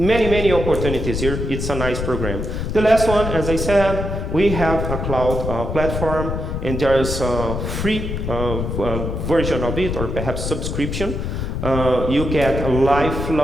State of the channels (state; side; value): noise; left; rumble, 3 dB below the sound